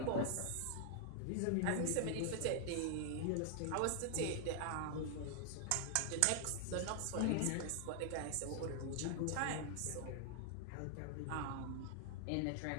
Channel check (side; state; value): both; different; correlation 0.00